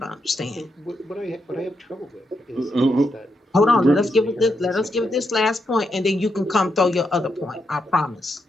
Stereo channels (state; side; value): normal; both; correlation 0.82